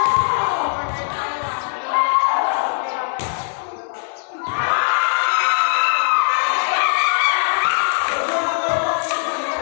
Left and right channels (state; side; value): silent; right; digital silence